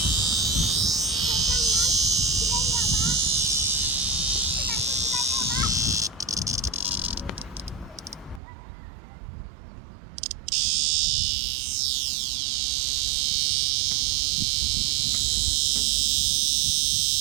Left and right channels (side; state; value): left; drops out; at 8.4 s